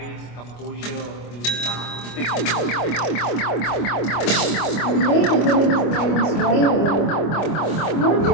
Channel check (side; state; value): right; late; 25 ms